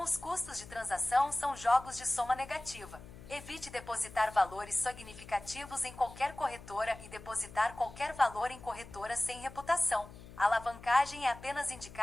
os custos de transação são jogos de soma negativa. Evite depositar valores significativos em qualquer corretora e depositar qualquer valor em corretora sem reputação. A alavancagem é apenas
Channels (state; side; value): noise; left; hum, 17 dB below the sound